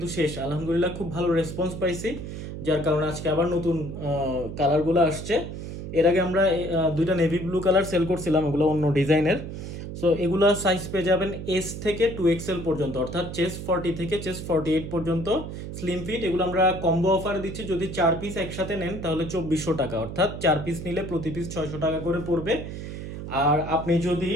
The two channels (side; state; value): right; noise; hum, 8 dB below the sound